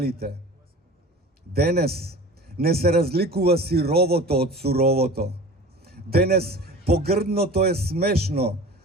Денес не се разликува сировото од суровото. Денес погрдното е смешно,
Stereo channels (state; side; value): normal; both; correlation 0.38